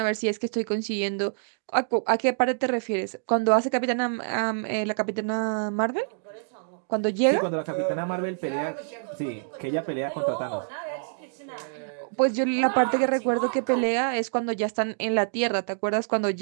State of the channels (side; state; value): left; silent; digital silence